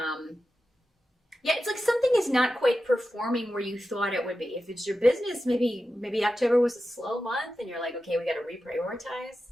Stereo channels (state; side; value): normal; both; correlation 0.92